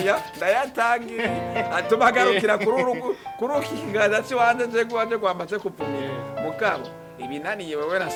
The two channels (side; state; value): both; identical; correlation 1.00